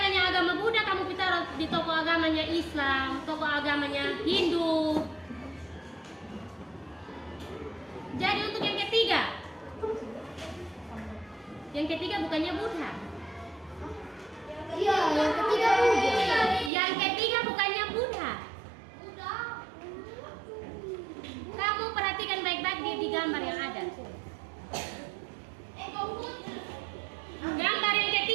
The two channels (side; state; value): left; drops out; at 16.7 s